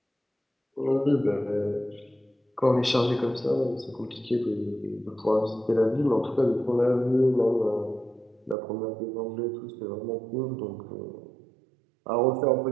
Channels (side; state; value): left; drops out; at 8.6 s